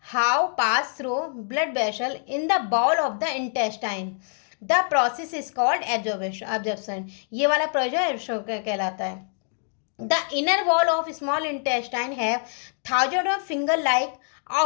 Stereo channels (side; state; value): right; silent; 62 dB below the other